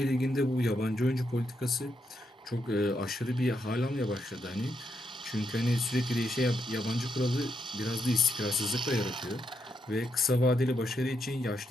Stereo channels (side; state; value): both; normal; correlation 0.80